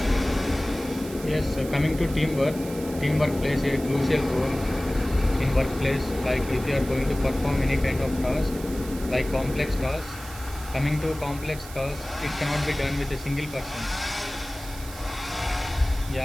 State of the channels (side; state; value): right; noise; hiss, 15 dB below the sound